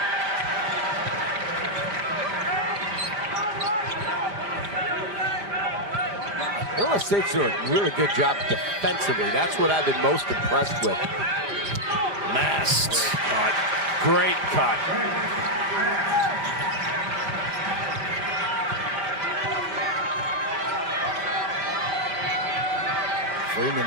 Illinois State's doing a really good job defensively. That's what I've been most impressed with. Mast. Cut. Great cut.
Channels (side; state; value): left; late; 4.9 ms